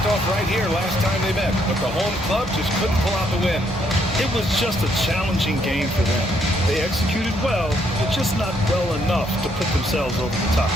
off right here last time they met, but the home club just couldn't pull out the win. It was just a challenging game for them. They executed well, but just not well enough to put themselves over the top.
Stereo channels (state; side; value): normal; both; correlation 0.72